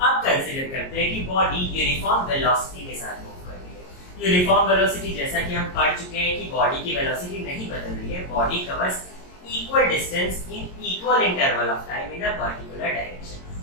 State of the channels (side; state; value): right; late; 22 ms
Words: कंसीडर करते हैं कि बॉडी यूनिफॉर्म वेलोसिटी के साथ मूव कर रही है। यूनिफॉर्म वेलोसिटी, जैसा कि हम पढ़ चुके हैं कि बॉडी की वेलोसिटी नहीं बदल रही है, body covers equal distance in equal interval of time in a particular